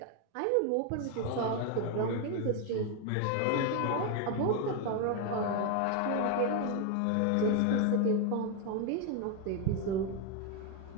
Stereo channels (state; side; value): different; both; correlation 0.01